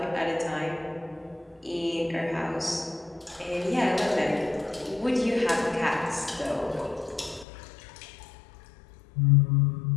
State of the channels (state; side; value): drops out; right; at 7.5 s